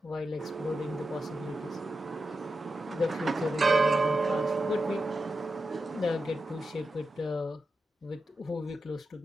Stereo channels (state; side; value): normal; both; correlation 0.90